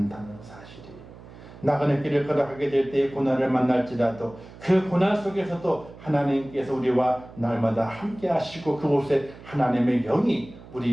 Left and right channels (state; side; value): noise; right; hum, 18 dB below the sound